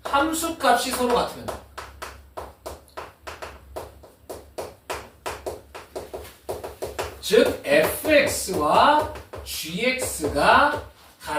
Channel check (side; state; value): both; identical; correlation 1.00